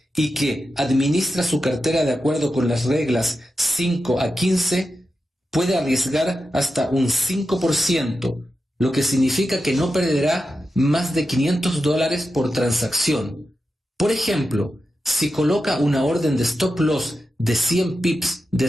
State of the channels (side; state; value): both; normal; correlation 0.90